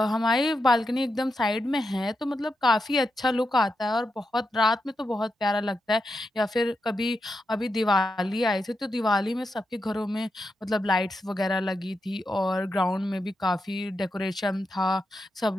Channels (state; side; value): normal; both; correlation 0.86